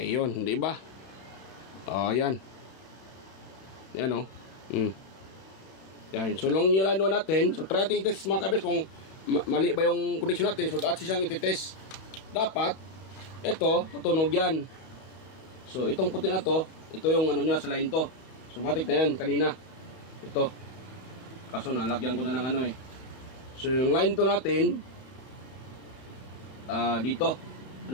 di ba? Oh, yan. Yan Yan, sulong yung lano natin. So try natin i-test mga kabis kung mali ba yung connection natin. So dapat siyang i-test. Dapat ito, tutunog yan. So itong puti na to, ito yung niya sa line to. So matik na yan kanina. Ito. Kaso nalagyan ko na ng So yung line to natin, dito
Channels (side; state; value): right; late; 32 ms